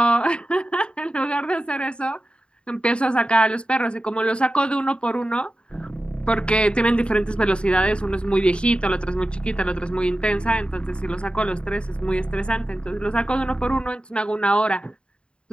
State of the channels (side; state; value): right; late; 0.054 ms